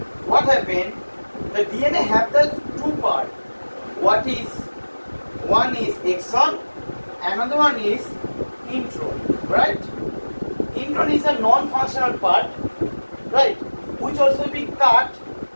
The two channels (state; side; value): inverted; both; correlation -1.00